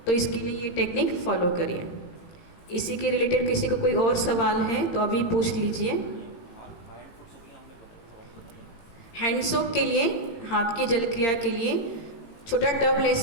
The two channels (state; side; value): late; right; 17 ms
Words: तो इसके लिए ये टेक्निक फॉलो करिए। इसी के रिलेटेड किसी को कोई और सवाल है तो अभी पूछ लीजिए। हैंड सोप के लिए, हाथ की जल क्रिया के लिए छोटा टब ले